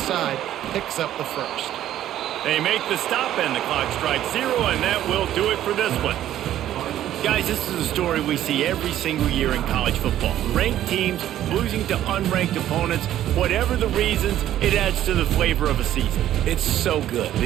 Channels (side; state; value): left; quieter; 12.3 dB